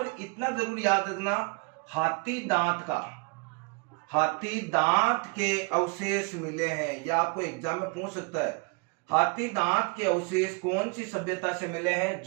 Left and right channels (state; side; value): quieter; left; 31.3 dB